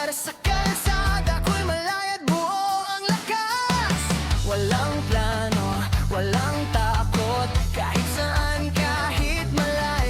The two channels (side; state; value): both; identical; correlation 1.00